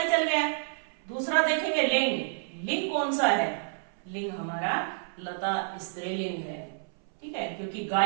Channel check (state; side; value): silent; left; 58 dB below the other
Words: चल गया। दूसरा देखेंगे लिंग। लिंग कौन सा है, लिंग हमारा लता स्त्रीलिंग है। ठीक है, क्योंकि